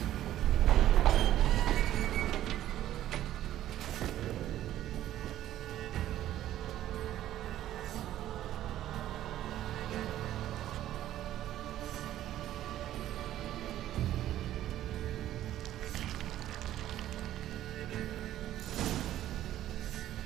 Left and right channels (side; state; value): left; quieter; 12.9 dB